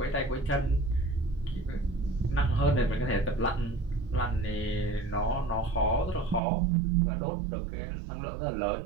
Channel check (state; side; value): drops out; left; at 6.4 s